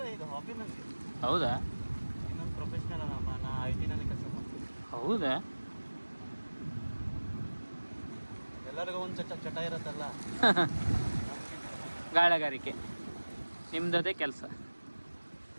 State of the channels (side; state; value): both; inverted; correlation -1.00